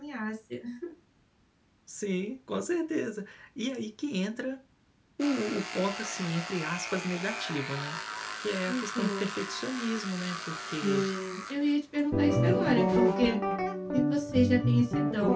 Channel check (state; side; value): identical; both; correlation 1.00